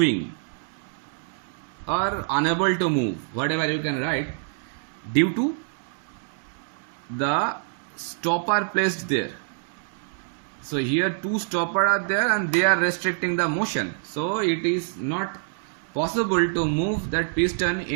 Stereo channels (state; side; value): silent; left; 61 dB below the other